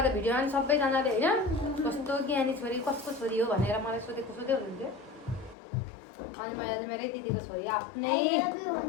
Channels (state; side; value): drops out; right; at 5.6 s